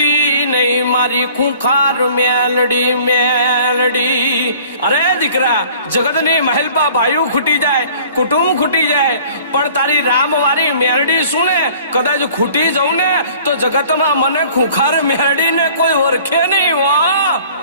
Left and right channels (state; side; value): inverted; both; correlation -0.50